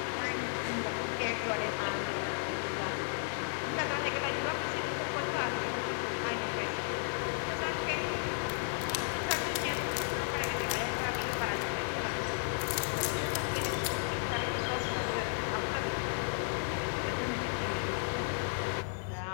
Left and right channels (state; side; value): silent; right; digital silence